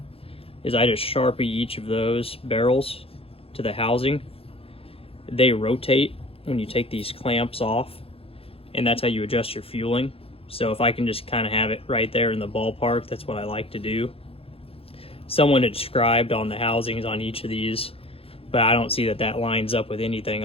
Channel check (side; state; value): right; late; 0.27 ms